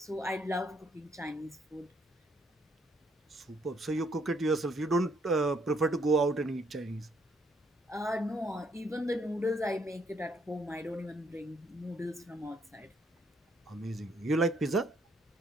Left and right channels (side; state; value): both; normal; correlation 0.70